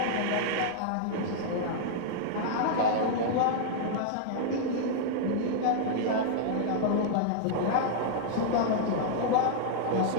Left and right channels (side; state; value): both; different; correlation -0.01